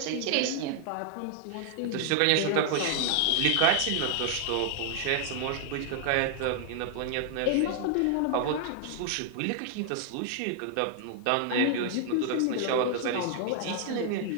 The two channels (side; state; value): both; different; correlation 0.00